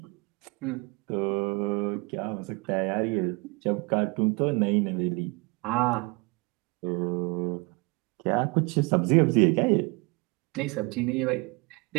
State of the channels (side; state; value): left; quieter; 27.9 dB